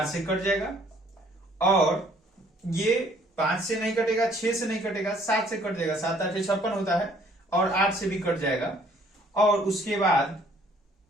से कट जाएगा, और ये 5 से नहीं कटेगा, 6 से नहीं कटेगा, 7 से कट जाएगा, 7 8 56 होता है, और 8 से भी कट जाएगा। और उसके बाद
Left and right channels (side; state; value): both; normal; correlation 0.60